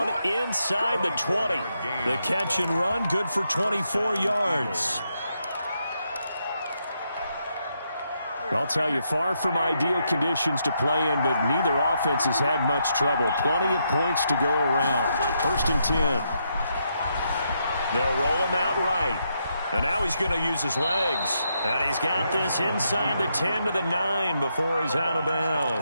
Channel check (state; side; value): inverted; both; correlation -0.80